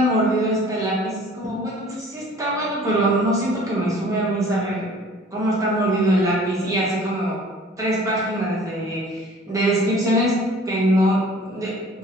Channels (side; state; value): both; normal; correlation 0.49